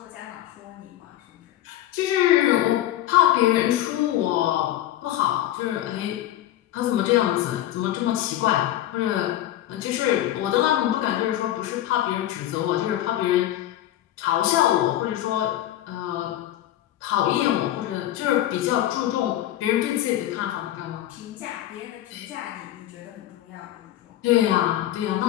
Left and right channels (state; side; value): quieter; right; 13.3 dB